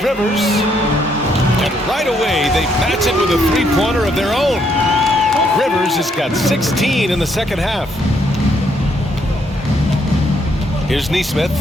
Rivers. And right away, they match it with a three-pointer of their own. Rivers has got 16 in the second half. Here's Nesmith.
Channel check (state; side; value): normal; both; correlation 0.72